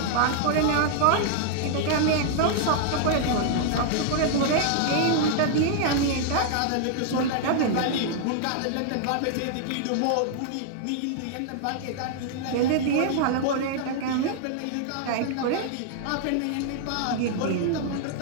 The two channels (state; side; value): different; both; correlation -0.01